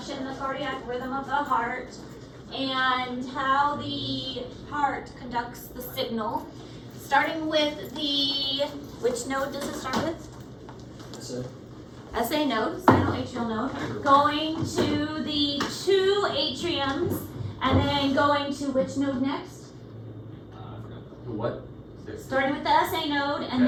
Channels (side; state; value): both; identical; correlation 1.00